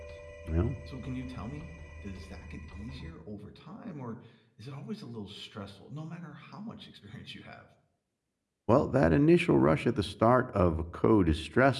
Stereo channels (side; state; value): both; identical; correlation 1.00